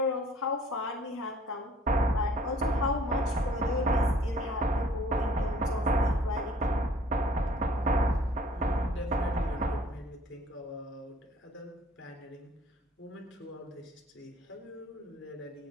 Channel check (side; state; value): both; normal; correlation 0.55